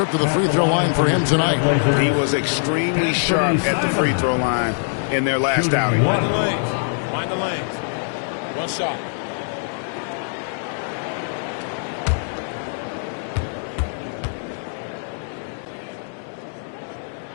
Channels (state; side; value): silent; right; digital silence